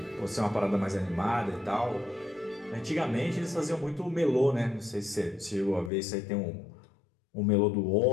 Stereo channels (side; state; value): right; drops out; at 5.9 s